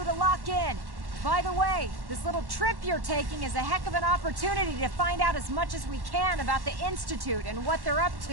to lock in. By the way, this little trip you're taking is a heck of an opportunity to find out as much as we can about the Institute and what they're up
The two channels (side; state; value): left; late; 1.1 ms